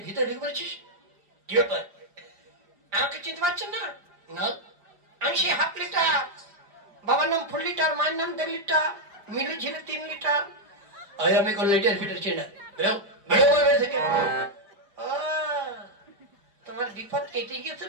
ভিতরে ঢুকে পড়েছিস? কি ব্যাপার? আমাকে চিনতে পারছেন না? না, আমি সেই হাফ লিটার, বাবার নাম ফুল লিটার, মায়ের নাম 1.5 লিটার, মিলু ছিল 3 লিটার। আমি কোন লিটার ফিটার চিনি না। থেকে তোমার বিপদ কেটে গিয়েছে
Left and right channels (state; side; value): late; left; 4.8 ms